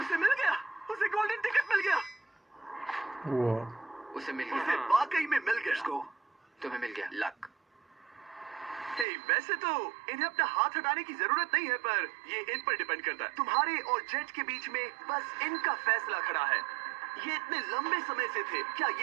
मिल गया, उसे गोल्डन टिकट मिल गया, वाह, उसे मिल उसे गया, वाकई में मिल गया। इसको तुम्हें मिल गया लक। हे, वैसे तो इन्हें अपना हाथ हटाने की जरूरत नहीं है, पर ये इन पर डिपेंड करता है। तुम्हारे और जेट के बीच में बस इनका फैसला खड़ा है। ये इतने लंबे समय से थे, क्या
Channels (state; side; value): drops out; left; at 9.1 s